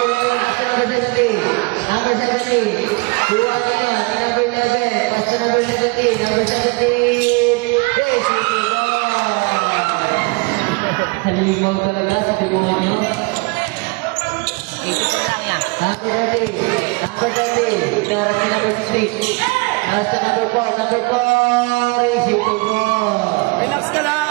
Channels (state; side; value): quieter; left; 27.8 dB